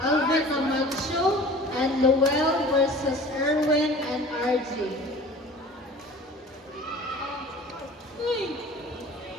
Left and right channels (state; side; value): normal; both; correlation 0.43